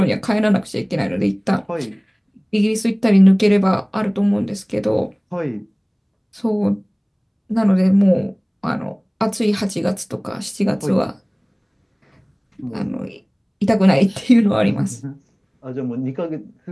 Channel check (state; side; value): identical; both; correlation 1.00